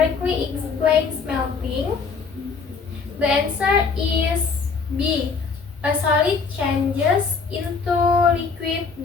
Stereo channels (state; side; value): quieter; right; 5.1 dB